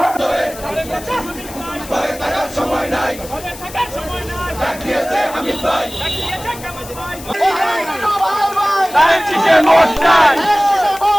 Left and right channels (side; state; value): left; noise; hiss, 16 dB below the sound